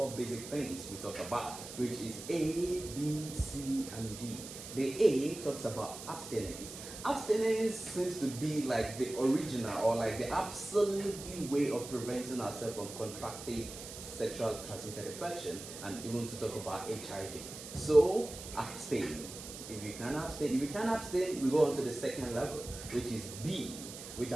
basic things we talk about, which is A, B, C, and D. The A talks about abstinence. Abstinence seems to be like the original or like the absolutely way of preventing ourselves from contracting sexual transmitted infection, and even to talk about HIV. So abstain. If you can't abstain, we go on to the second level, which is B, which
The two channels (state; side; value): noise; right; hiss, 11 dB below the sound